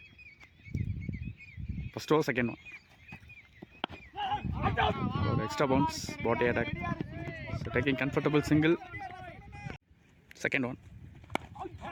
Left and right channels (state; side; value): identical; both; correlation 1.00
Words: ஃபஸ்ட் ஓவர் செகண்ட் ஒன் ஒரு extra bounce body attack. So taking comfortable single. Second one